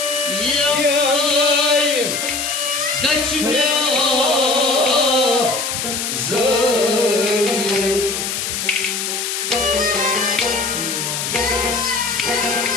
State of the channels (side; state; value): left; noise; hiss, 3 dB below the sound